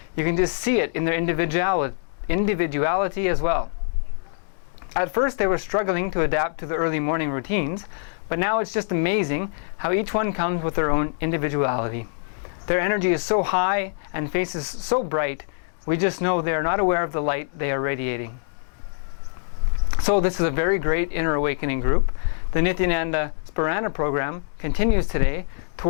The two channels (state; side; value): silent; right; digital silence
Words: you can just see it in their individuality as well. At first they were struggling to adapt to the early morning routines, but now it's just amazing how each one comes with their own individuality. Their energy is so high and faces so bright, we just know they are not aware of the light they are radiating. So this is a very great Inner Awakening group. The Nithyananda Sparana program continues today